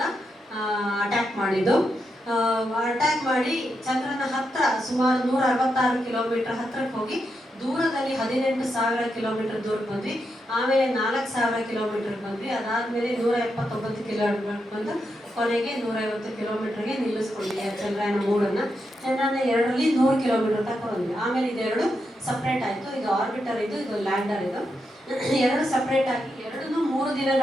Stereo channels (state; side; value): normal; both; correlation 0.84